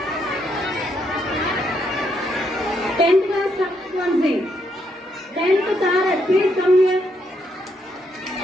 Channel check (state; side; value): normal; both; correlation 0.76